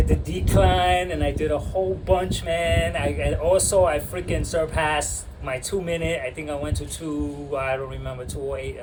the decline and I did a whole bunch, man. I freaking surpassed my 2 minute. I think I went to 208 or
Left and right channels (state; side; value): identical; both; correlation 1.00